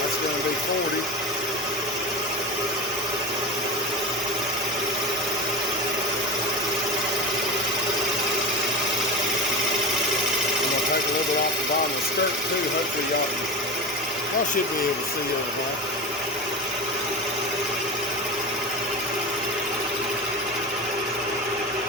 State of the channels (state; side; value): normal; both; correlation 0.26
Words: Going to be 40. I'm going to take a little bit off the bottom of the skirt too. Hopefully y'all should be able to see everything.